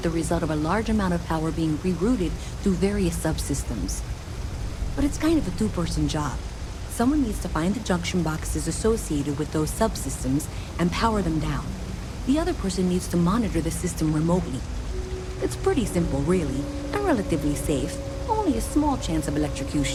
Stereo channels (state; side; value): identical; both; correlation 1.00